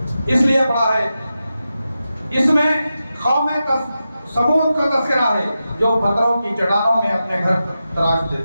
اس لیے پڑا ہے، اس میں قوم ثمود کا تذکرہ ہے جو پتھروں کی چٹانوں میں اپنے گھر تراش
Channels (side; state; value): both; inverted; correlation -0.91